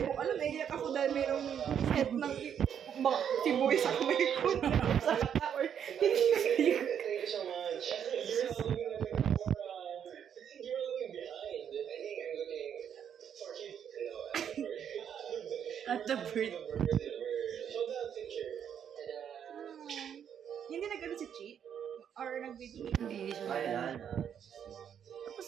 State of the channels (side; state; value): left; quieter; 8.6 dB